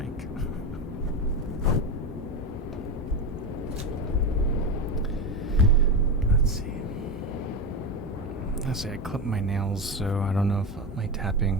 I clip my nails, so I don't know if my tapping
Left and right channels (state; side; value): normal; both; correlation 0.17